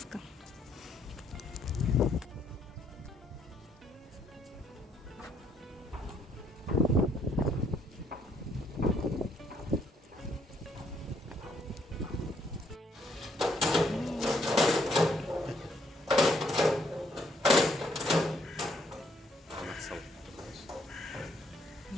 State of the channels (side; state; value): both; normal; correlation 0.69